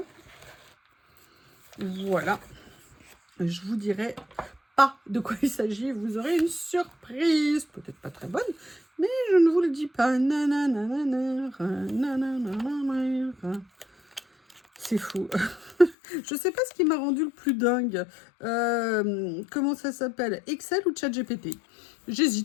Voilà. Je vous dirai pas de quoi il s'agit, vous aurez une surprise. Peut-être pas très bonne, mais je ne vous le dis pas. C'est fou. Je sais pas ce qui m'a rendu le plus dingue. Comment ça s'appelle? Excel ou ChatGPT?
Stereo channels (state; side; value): drops out; right; at 16.0 s